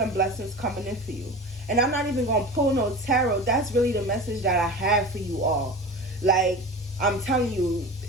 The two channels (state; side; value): normal; both; correlation 0.32